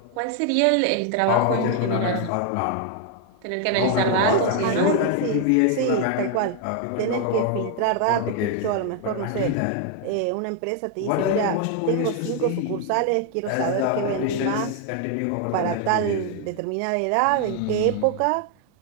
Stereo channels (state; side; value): different; both; correlation 0.00